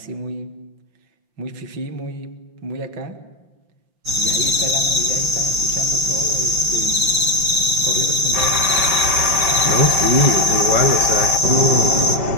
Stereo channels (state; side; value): late; left; 5.6 ms